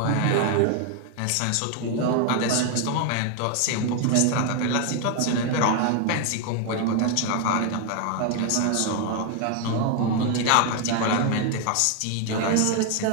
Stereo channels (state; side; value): different; both; correlation 0.00